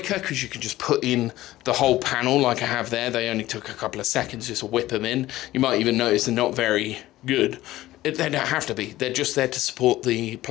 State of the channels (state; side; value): quieter; right; 15.9 dB